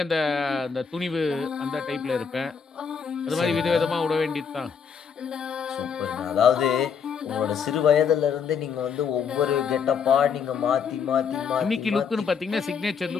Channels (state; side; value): quieter; right; 6.5 dB